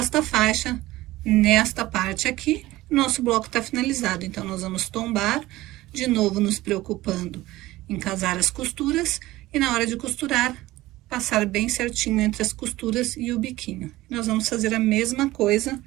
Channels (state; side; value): quieter; left; 17.6 dB